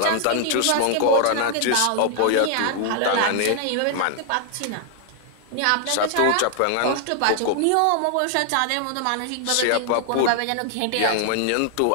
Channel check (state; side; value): different; both; correlation 0.00